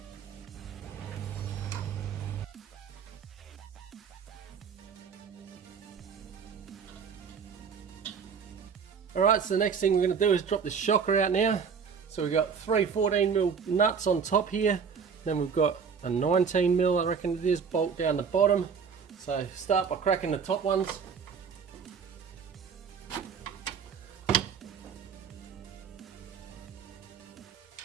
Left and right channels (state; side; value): quieter; left; 6.3 dB